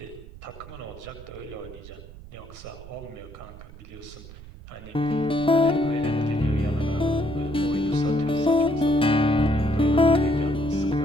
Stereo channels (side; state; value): right; noise; rumble, 17 dB below the sound